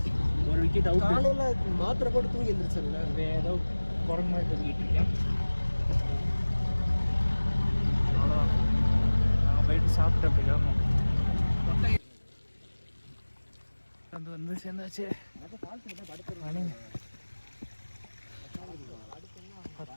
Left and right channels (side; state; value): both; inverted; correlation -1.00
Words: ஒரு விக்கெட் அவுட். மாத்திரை போட்டு தூங்கி எழுந்திரிச்சல, ஏதோ குரங்கு மாதிரி தூங்கிட்டு இருக்கேன். அவ்வளோதான், நாங்கள் போயிட்டு சாப்பிட்டு அப்படி கிளம்பும். வந்து சேர்ந்தாச்சு. மணி